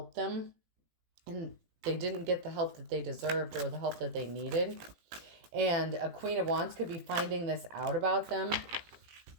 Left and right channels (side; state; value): left; late; 18 ms